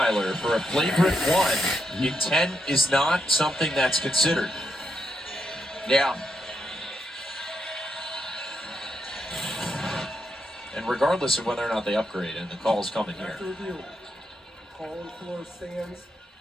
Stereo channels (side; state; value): both; normal; correlation 0.81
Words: for a flagrant 1, intent is not something that's considered. Yeah. And regardless of whether or not they upgrade, and the call's coming here. After review, call on the floor stands.